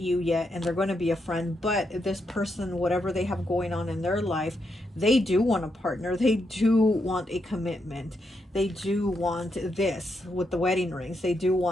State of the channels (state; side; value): normal; both; correlation 0.81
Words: yet and they're going to be a friend. But this person, whatever they have going on in their life, they do want a partner. They do want a commitment. They do want this with the wedding rings. They do